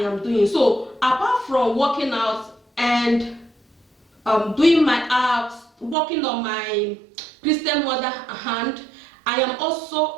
doing. So apart from working out and doing my apps, working on my Christian mother hand, I am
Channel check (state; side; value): drops out; left; at 6.0 s